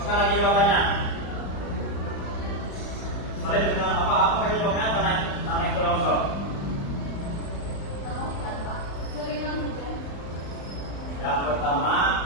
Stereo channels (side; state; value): right; late; 35 ms